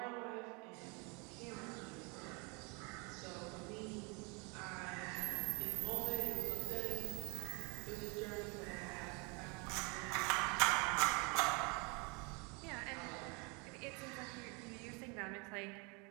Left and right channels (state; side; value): quieter; left; 31.4 dB